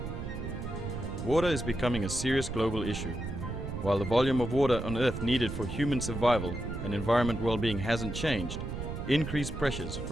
Water is becoming a serious global issue. While the volume of water on Earth needed for human survival and environment well-being hasn't changed, increased pressures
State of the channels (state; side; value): noise; right; rumble, 6 dB below the sound